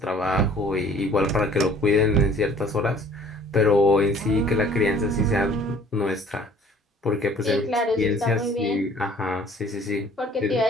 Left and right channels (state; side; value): normal; both; correlation 0.53